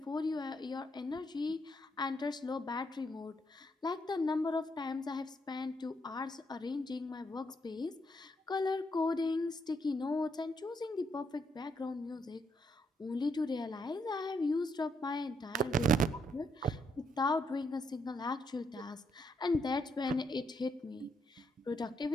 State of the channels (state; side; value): normal; both; correlation 0.76